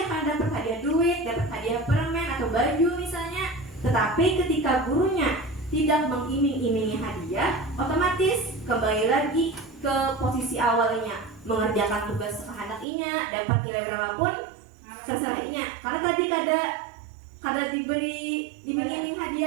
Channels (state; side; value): drops out; left; at 12.9 s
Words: karena dapat hadiah duit, dapat hadiah permen atau baju misalnya. Tetapi ketika gurunya tidak mengiming-imingi hadiah, otomatis kembali lagi ke posisi awalnya, mengerjakan tugas kehendakinya, dapat nilai berapapun terserahnya. Karena tadi kada diberi iming-iming